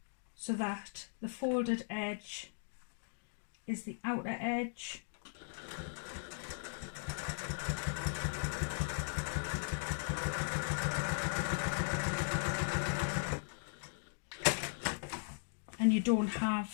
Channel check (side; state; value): right; silent; digital silence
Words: so that the folded edge is the outer edge. And you don't